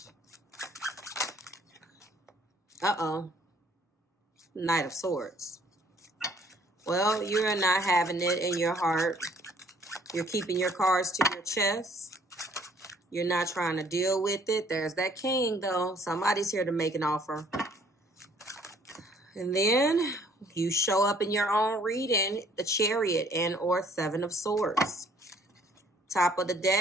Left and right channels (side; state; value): both; normal; correlation 0.60